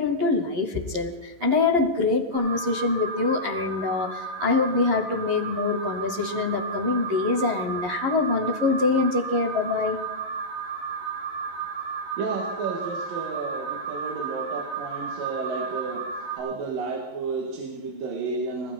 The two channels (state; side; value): late; left; 11 ms